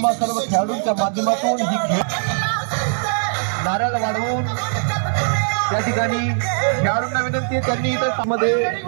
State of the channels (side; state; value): left; silent; digital silence